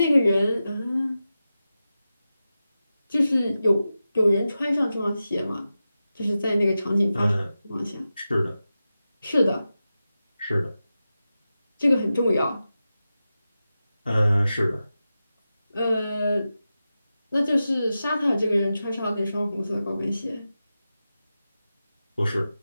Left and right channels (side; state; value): both; inverted; correlation -0.92